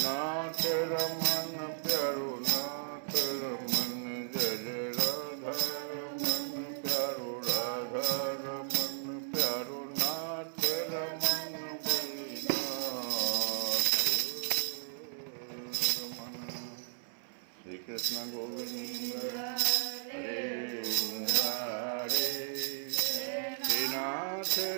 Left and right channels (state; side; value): silent; left; 55 dB below the other